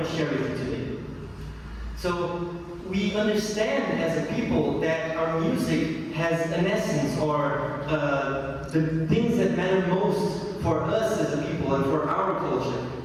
to share with you today. So we understand as a people that our music has an essence, or the things that matter most for us as a people and for our culture.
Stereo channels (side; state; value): both; identical; correlation 1.00